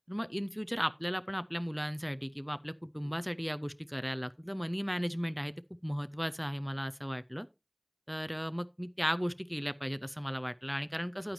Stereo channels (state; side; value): identical; both; correlation 1.00